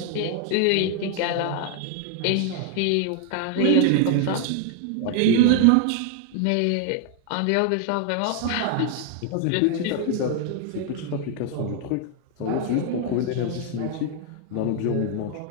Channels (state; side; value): different; both; correlation 0.00